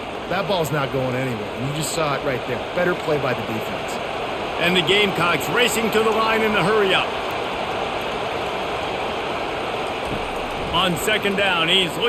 ball's not going anywhere. And you just saw it right there. Better play by the defense. And the Gamecocks racing to the line in the hurry up. On second down, he's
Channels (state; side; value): identical; both; correlation 1.00